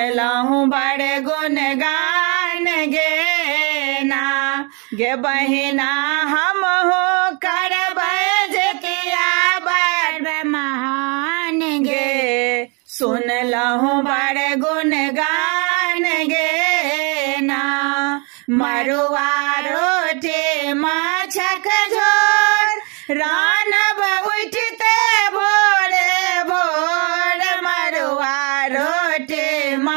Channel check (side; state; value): left; quieter; 33.0 dB